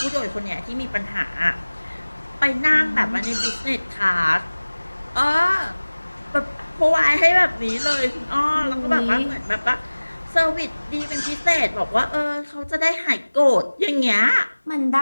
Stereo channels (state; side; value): inverted; both; correlation -1.00